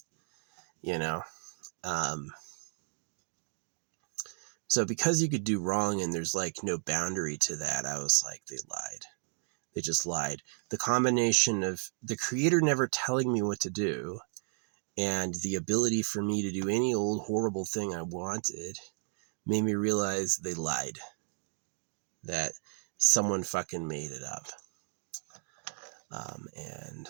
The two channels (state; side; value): silent; left; digital silence